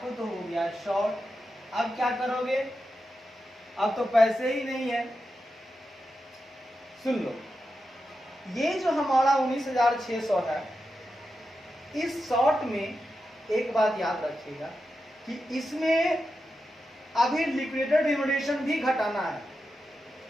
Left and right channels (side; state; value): both; normal; correlation 0.89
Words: तो हो गया शॉर्ट। अब क्या करोगे, अब तो पैसे ही नहीं है। सुन लो, ये जो हमारा 19,600 है, इस शॉर्ट में एक बात याद रखिएगा कि इसमें अभी लिक्विडेटेड रिम्यूनरेशन भी घटाना है,